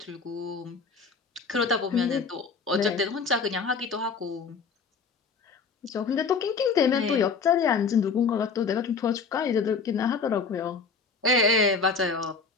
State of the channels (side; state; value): right; quieter; 5.0 dB